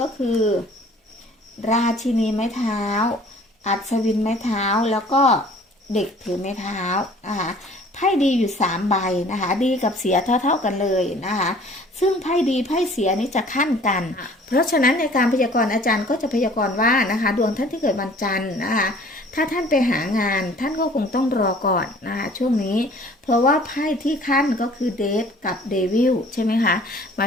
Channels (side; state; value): both; normal; correlation 0.52